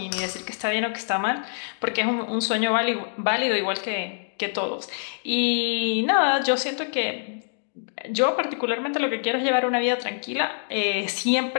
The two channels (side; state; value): right; silent; digital silence